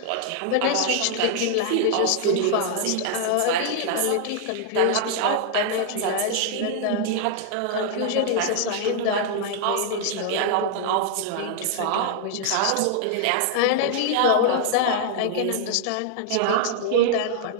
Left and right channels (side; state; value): both; different; correlation 0.00